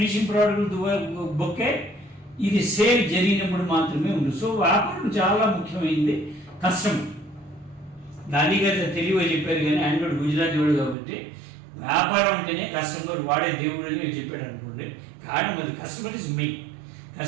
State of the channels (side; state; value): left; drops out; at 11.0 s